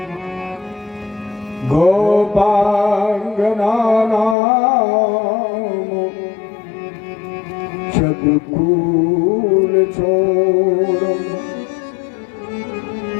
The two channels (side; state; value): right; drops out; at 4.4 s